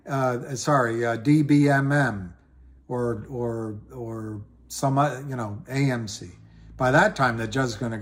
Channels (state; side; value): identical; both; correlation 1.00